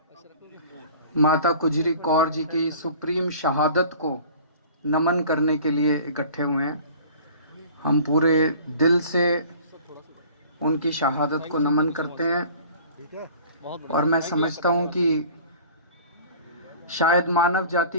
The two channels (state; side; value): inverted; both; correlation -0.45